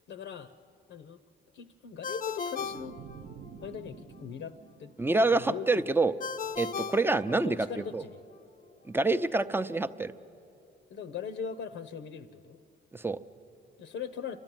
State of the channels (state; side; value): normal; both; correlation 0.68